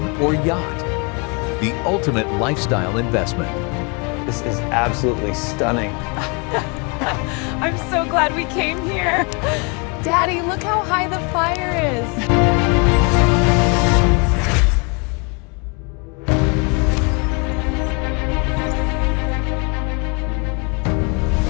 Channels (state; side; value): quieter; right; 32.9 dB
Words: or yacht. The ultimate lifestyle investment. This is absolutely stunning. I'm so glad we came here. Daddy, look how high the fire is.